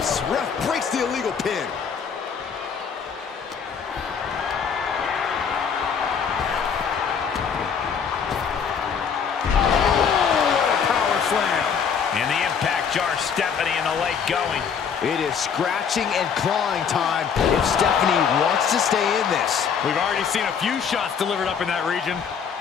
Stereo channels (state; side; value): quieter; right; 6.8 dB